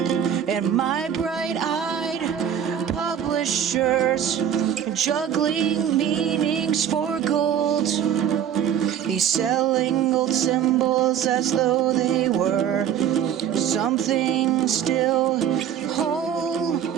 And my bright-eyed publishers juggling meanings for gold. He's selling old symbols as though they were something still whole.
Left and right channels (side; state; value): left; quieter; 9.2 dB